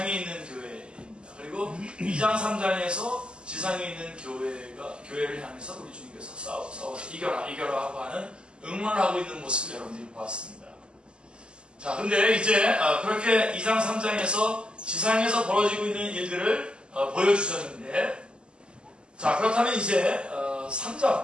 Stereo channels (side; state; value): left; late; 0.050 ms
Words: 있는 교회입니다. 그리고 2장 3장에서 지상에 있는 교회를 향해서 우리 주님께서 싸워서 이겨라 하고 하는 응원을 하고 있는 모습을 여러분들이 보았습니다. 자, 근데 이제 그렇게 2장 3장에서 지상에서 벌어지고 있는 일들을 보여주셨는데, 자, 그렇다면 이제